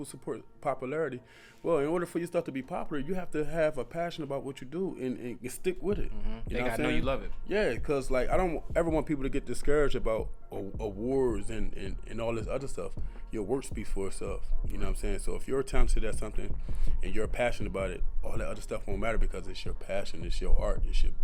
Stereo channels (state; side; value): identical; both; correlation 1.00